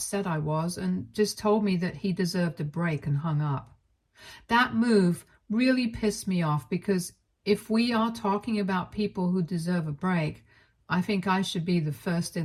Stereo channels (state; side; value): identical; both; correlation 1.00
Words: I was and just told me that he deserved a break and hung up. That move really pissed me off because if we are talking about people who deserve a break, I think I should be the first